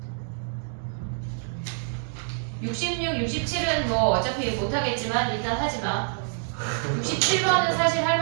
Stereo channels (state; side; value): silent; left; 61 dB below the other